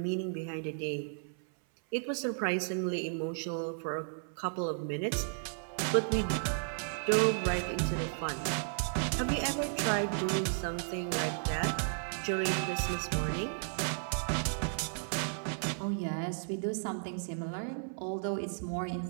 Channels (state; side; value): silent; left; 55 dB below the other